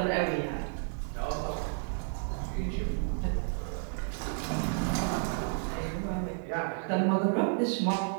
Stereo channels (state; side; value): silent; left; 56 dB below the other